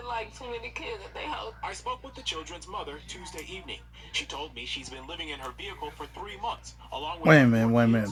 like too many kids at their house. I spoke with the children's mother Tuesday evening. She told me she's been living in her vehicle for 3 months, along with Wait a minute.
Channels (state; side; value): identical; both; correlation 1.00